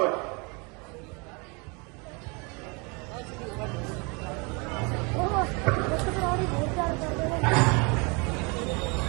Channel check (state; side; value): quieter; left; 30.4 dB